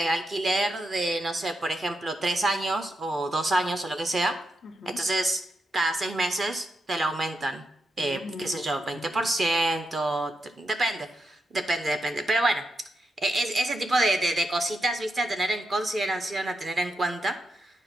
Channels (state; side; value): normal; both; correlation 0.85